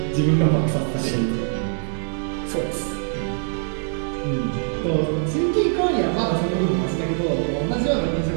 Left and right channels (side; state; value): left; silent; digital silence